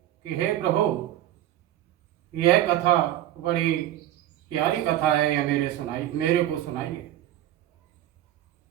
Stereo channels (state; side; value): quieter; left; 13.2 dB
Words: हे प्रभु, यह कथा बड़ी प्यारी कथा है, यह मेरे को सुनाइए।